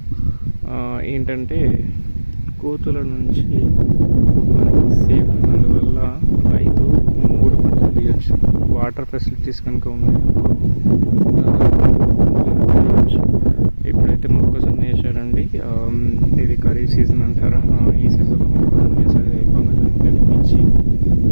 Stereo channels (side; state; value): both; inverted; correlation -1.00